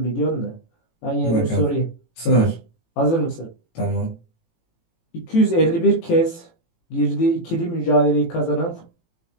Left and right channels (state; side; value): late; right; 18 ms